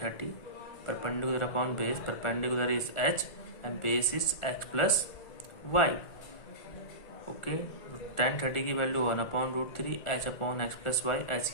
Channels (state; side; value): late; right; 1.4 ms